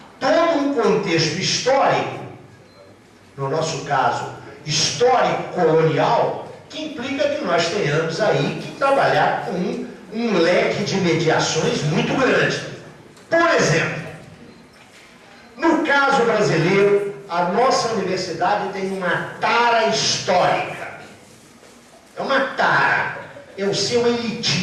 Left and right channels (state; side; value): identical; both; correlation 1.00